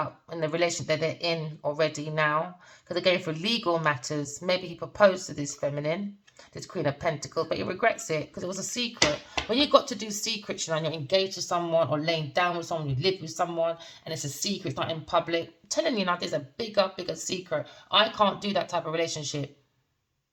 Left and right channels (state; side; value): identical; both; correlation 1.00